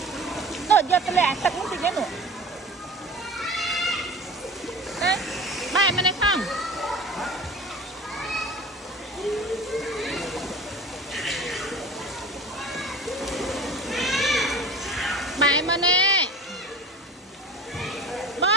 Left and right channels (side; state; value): both; normal; correlation 0.36